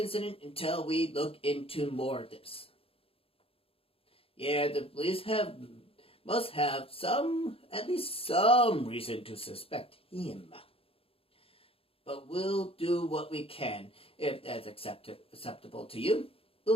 until we look into more of this. Yeah, the police must have at least some reason to suspect him. But we'll do what we can. If that's acceptable to you,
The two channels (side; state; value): right; late; 0.27 ms